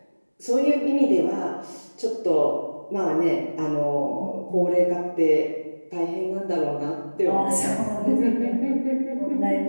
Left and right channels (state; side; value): inverted; both; correlation -1.00